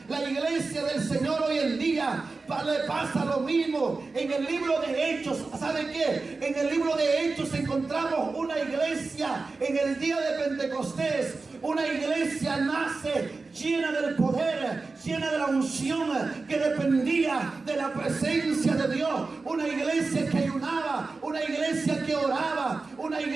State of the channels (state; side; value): quieter; left; 3.9 dB